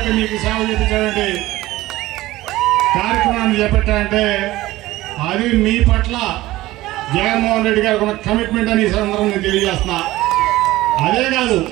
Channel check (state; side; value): quieter; left; 17.3 dB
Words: మీకు సేవ చేయించాలంటే కార్యక్రమాన్ని చేపట్టాలంటే అది మీ పట్ల జగన్మోహన్ రెడ్డి గారికి ఉన్న కమిట్మెంట్ అని ఈ సందర్భంగా తెలియజేస్తున్నా. అదే కాదు,